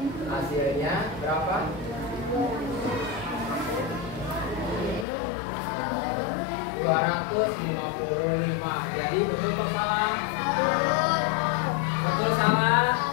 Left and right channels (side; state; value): right; drops out; at 5.1 s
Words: Hasilnya berapa? 252. 255. Jadi betul atau salah? Betul salah?